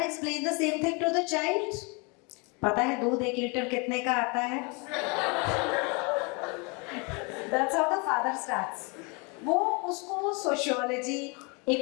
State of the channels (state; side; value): quieter; right; 30.9 dB